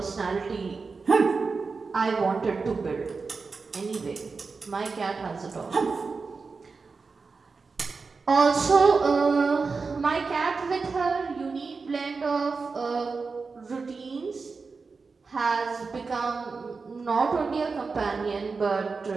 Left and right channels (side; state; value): left; quieter; 4.5 dB